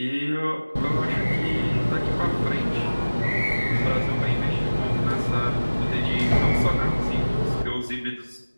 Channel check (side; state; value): both; inverted; correlation -1.00